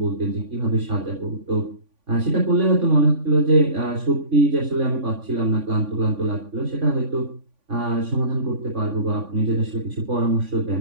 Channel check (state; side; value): late; left; 3.5 ms